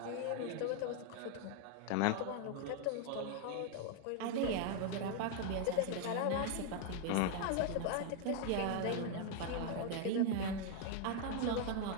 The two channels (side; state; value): both; different; correlation 0.00